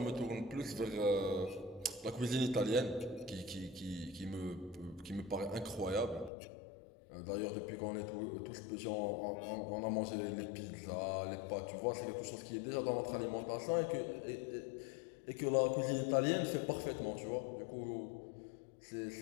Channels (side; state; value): right; drops out; at 6.3 s